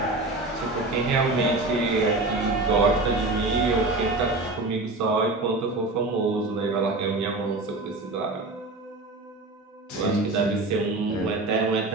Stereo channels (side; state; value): left; quieter; 3.0 dB